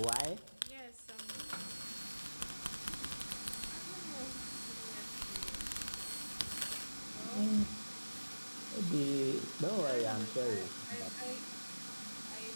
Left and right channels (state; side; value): inverted; both; correlation -1.00